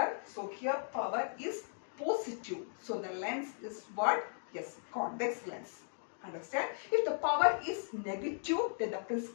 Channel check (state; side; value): silent; right; digital silence